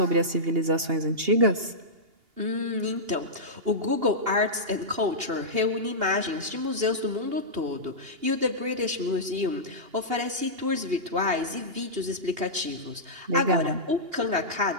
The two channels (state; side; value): late; left; 2.8 ms